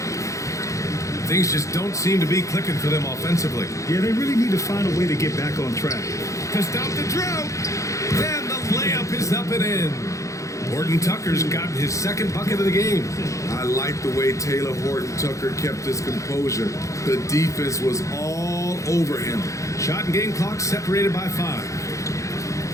Things just don't seem to be clicking for them offensively. Yeah, they really need to find a way to get back on track. To stop the drought. And the layup is up and in. Horton Tucker's gotten his second bucket of the game. I like the way Taylor Horton Tucker kept his composure. The defense was all over him. Shot and game clock separated by 5.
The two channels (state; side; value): late; right; 0.15 ms